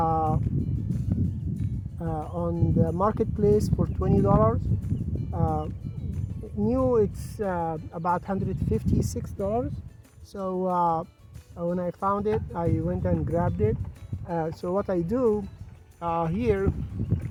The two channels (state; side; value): identical; both; correlation 1.00